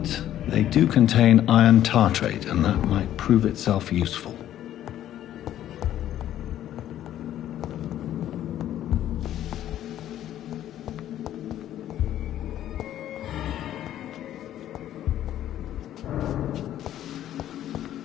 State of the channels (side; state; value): right; quieter; 12.0 dB